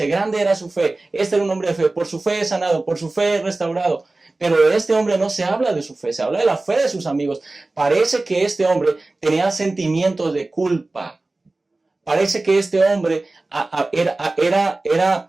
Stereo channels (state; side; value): quieter; left; 3.1 dB